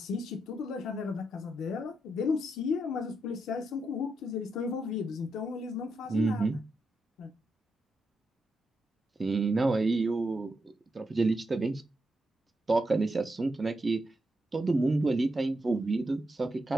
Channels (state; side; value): normal; both; correlation 0.84